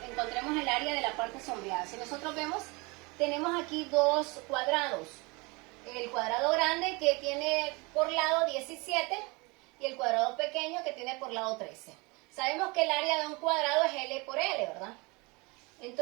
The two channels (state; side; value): quieter; left; 27.0 dB